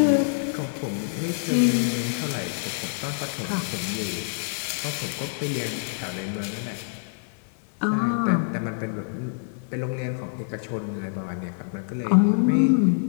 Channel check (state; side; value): silent; right; 61 dB below the other